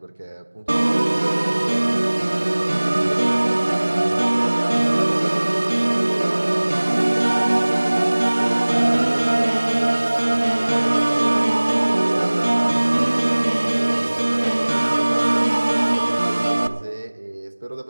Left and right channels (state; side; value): inverted; both; correlation -1.00